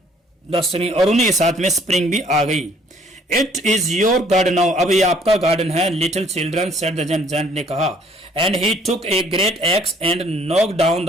the spring, और उन्हीं के साथ में स्प्रिंग भी आ गई। It is your garden now, अब ये आपका गार्डन है, little children said the giant ने कहा। And he took a great x and knock down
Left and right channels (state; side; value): normal; both; correlation 0.60